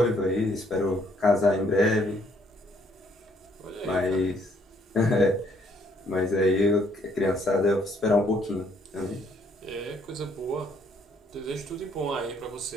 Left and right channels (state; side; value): normal; both; correlation 0.67